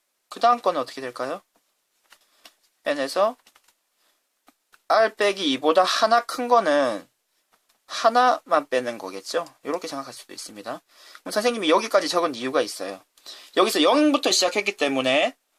그 다음 거는 어떻게 될까요? n에서 r 빼기 2보다 하나 큰 거는 하나만 빼는 거겠죠? 이렇게 생각할 수도 있습니다. 그럼 선생님이 여기까지 적은 이유가 있어요. 여기서 0부터 시작했기 때문에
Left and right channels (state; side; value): identical; both; correlation 1.00